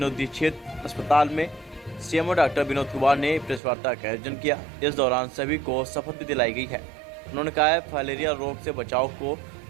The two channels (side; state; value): left; drops out; at 3.6 s